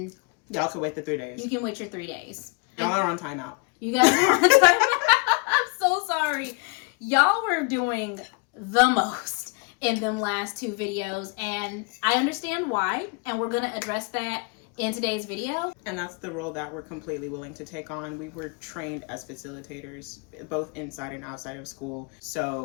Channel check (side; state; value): right; quieter; 32.4 dB